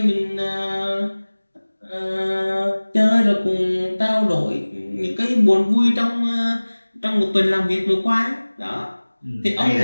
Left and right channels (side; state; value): both; inverted; correlation -1.00